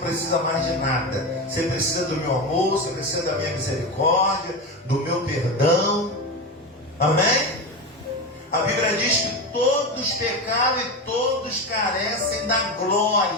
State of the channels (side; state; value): both; normal; correlation 0.20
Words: mais de nada. Você precisa do meu amor, você precisa da minha misericórdia, do meu perdão. Amém? A Bíblia diz que todos pecaram e todos carecem da